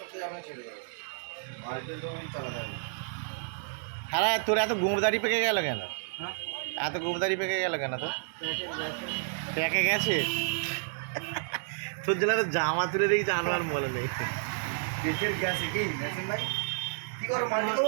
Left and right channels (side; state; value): left; silent; digital silence